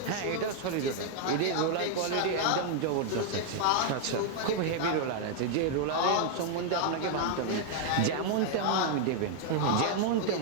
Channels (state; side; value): different; both; correlation 0.00